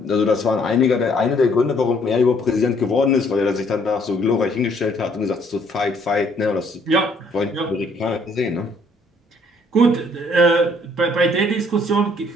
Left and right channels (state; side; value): normal; both; correlation 0.64